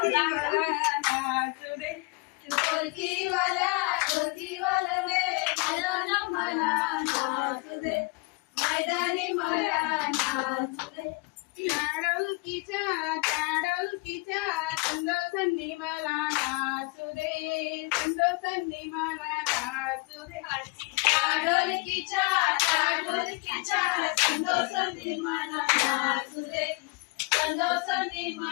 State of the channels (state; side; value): quieter; right; 27.3 dB